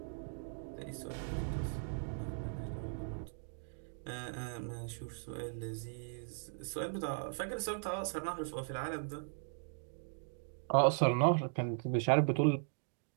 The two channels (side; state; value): left; silent; digital silence